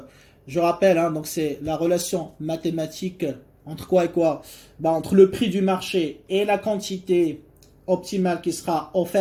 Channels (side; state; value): both; identical; correlation 1.00